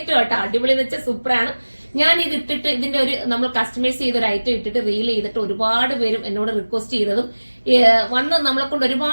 കേട്ടോ. അടിപൊളി എന്ന് വെച്ചാൽ സൂപ്പറാണ്. ഞാൻ ഇത് ഇട്ടിട്ട് ഇതിന്റെ ഒരു നമ്മൾ കസ്റ്റമൈസ് ചെയ്ത ഒരു ഐറ്റം ഇട്ടിട്ട് റീൽ ചെയ്തിട്ട് ഒരുപാട് പേരും എന്നോട് റിക്വസ്റ്റ് ചെയ്തതും വന്ന് നമ്മളെ കൊണ്ട്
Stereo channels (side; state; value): both; inverted; correlation -1.00